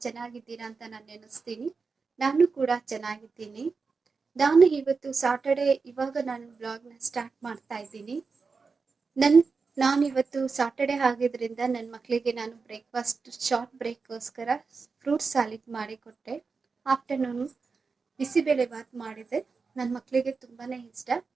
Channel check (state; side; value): quieter; left; 4.7 dB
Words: ಚೆನ್ನಾಗಿದ್ದೀರಾ ಅಂತ ನಾನು ನೆನೆಸ್ತೀನಿ. ನಾನು ಕೂಡ ಚೆನ್ನಾಗಿದ್ದೀನಿ. ನಾನು ಇವತ್ತು ಸಾಟರ್ಡೆ ನಾನು ಬ್ಲಾಗ್ನ ಸ್ಟಾರ್ಟ್ ಮಾಡ್ತಾ ಇದ್ದೀನಿ. ನಾನಿವತ್ತು ಸಾಟರ್ಡೆ ಆಗಿದ್ರಿಂದ ನನ್ನ ಮಕ್ಕಳಿಗೆ ನಾನು ಬ್ರೇಕ್ಫಾಸ್ಟ್ ಶಾರ್ಟ್ ಬ್ರೇಕ್ಗೋಸ್ಕರ ಫ್ರೂಟ್ ಸಾಲಿಡ್ ಮಾಡಿಕೊಟ್ಟೆ. ಆಫ್ಟರ್ನೂನು ಬಿಸಿಬೇಳೆ ಬಾತ್ ಮಾಡಿದೆ. ನನ್ನ ಮಕ್ಕಳಿಗೆ ತುಂಬಾ ಇಷ್ಟ